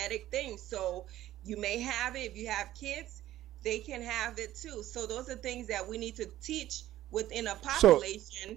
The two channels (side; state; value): left; quieter; 14.0 dB